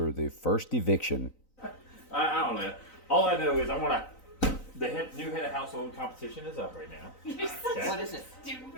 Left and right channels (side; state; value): right; late; 3.9 ms